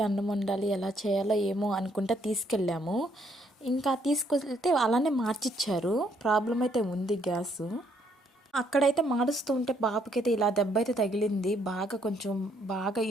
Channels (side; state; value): both; normal; correlation 0.70